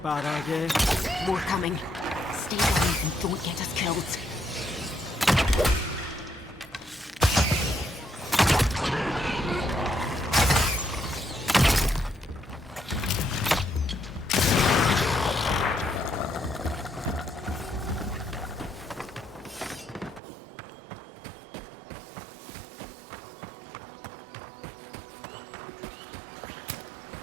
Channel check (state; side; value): drops out; left; at 20.2 s